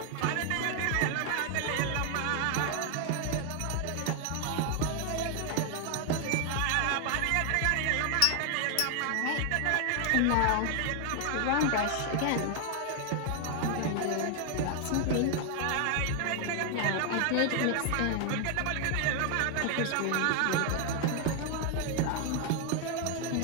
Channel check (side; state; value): both; different; correlation 0.00